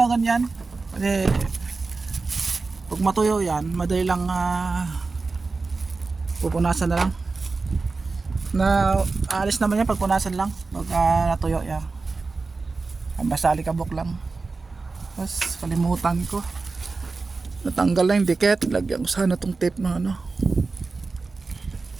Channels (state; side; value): quieter; left; 4.0 dB